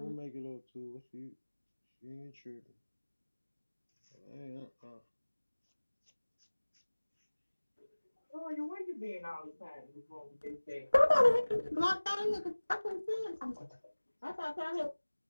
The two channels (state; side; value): inverted; both; correlation -1.00